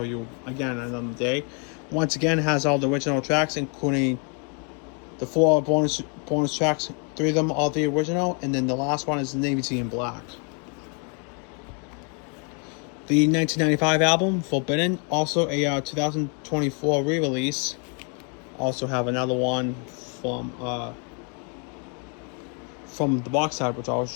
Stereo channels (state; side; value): quieter; right; 37.9 dB